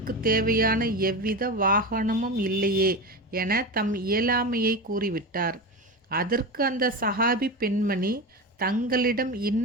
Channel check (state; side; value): normal; both; correlation 0.22